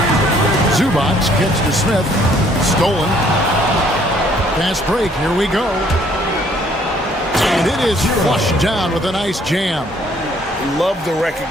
Zubac gets to Smith. Stolen. Fast break. Here we go. And it is flushed down with a nice jam. Love the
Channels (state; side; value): normal; both; correlation 0.62